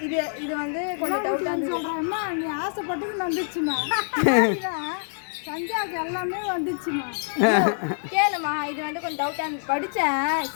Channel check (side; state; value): right; silent; 55 dB below the other